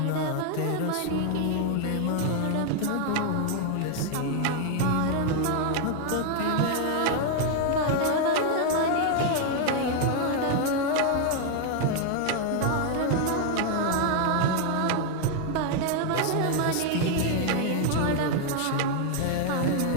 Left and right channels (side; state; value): both; different; correlation 0.00